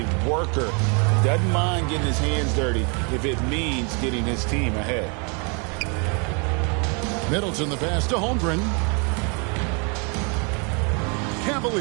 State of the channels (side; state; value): left; quieter; 35.0 dB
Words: worker. Doesn't mind getting his hands dirty if it means getting his team ahead. Middleton the pass to Holmgren.